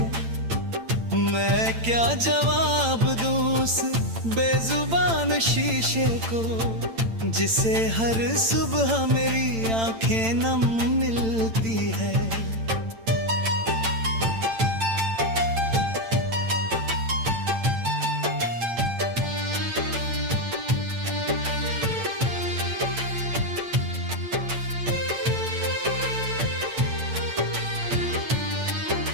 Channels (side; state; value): left; late; 8.9 ms